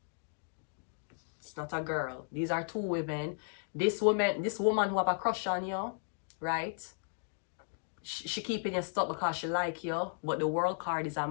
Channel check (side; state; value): right; silent; digital silence